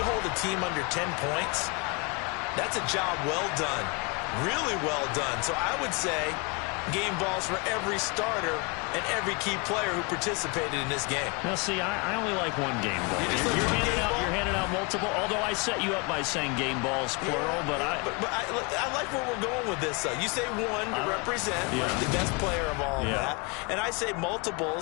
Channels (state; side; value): quieter; right; 30.1 dB